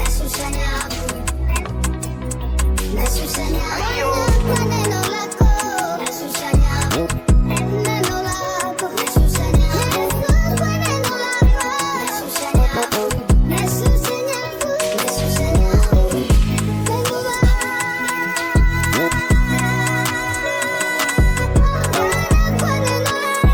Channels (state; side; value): identical; both; correlation 1.00